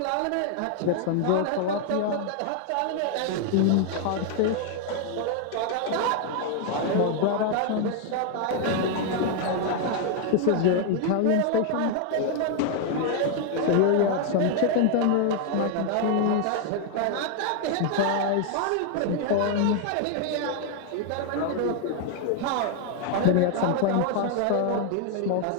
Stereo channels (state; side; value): different; both; correlation 0.00